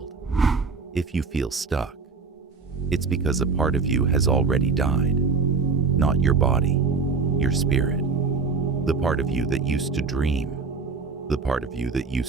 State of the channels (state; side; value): quieter; left; 4.7 dB